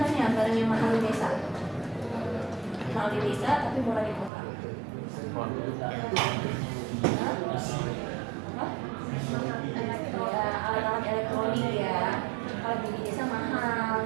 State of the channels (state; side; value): drops out; left; at 4.3 s